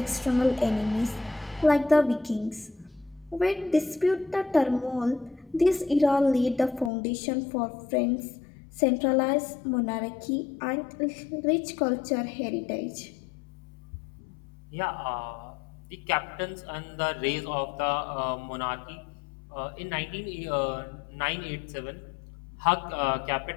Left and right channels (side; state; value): right; drops out; at 6.9 s